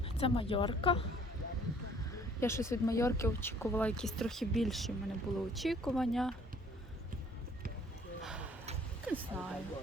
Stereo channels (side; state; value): both; normal; correlation 0.57